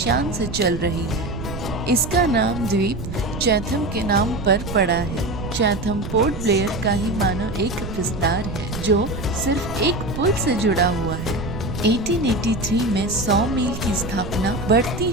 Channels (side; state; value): right; noise; rumble, 8 dB below the sound